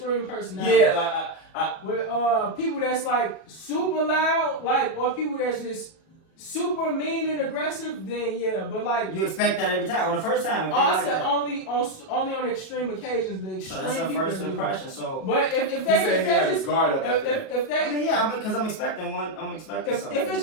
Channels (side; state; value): right; late; 37 ms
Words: personality. Yeah, like With people that's like super loud, like or people that's just super mean and aggressive, then yeah. But like You expect that every time on the first time. I said only on extreme occasions. The So extreme that's a people first that do it. impression. So But if he they said he had his just guard up after that. if they I mean, yeah, because I'm expecting one. I'm expecting something. if it's